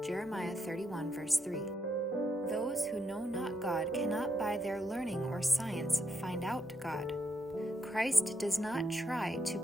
Jeremiah 31, verse 3. Those who know not God cannot by their learning or science find out God. Christ does not try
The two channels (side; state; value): both; normal; correlation 0.80